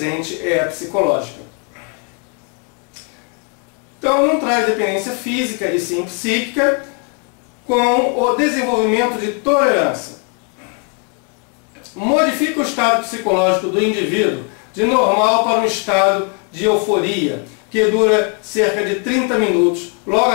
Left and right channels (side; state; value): right; quieter; 34.9 dB